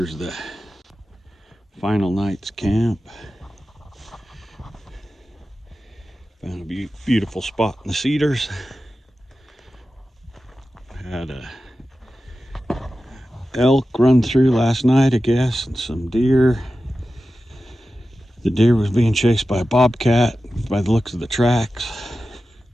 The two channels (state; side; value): normal; both; correlation 0.93